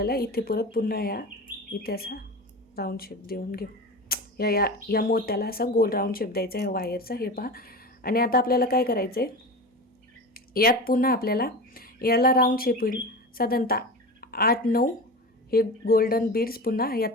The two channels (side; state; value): both; normal; correlation 0.28